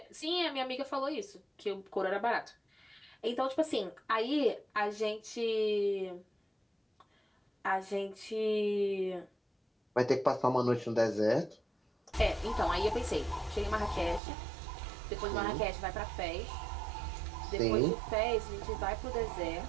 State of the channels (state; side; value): drops out; left; at 14.2 s